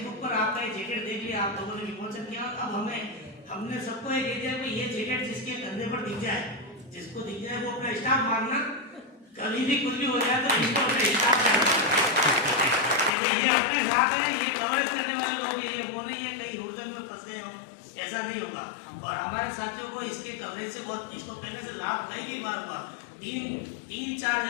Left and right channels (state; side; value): drops out; right; at 13.1 s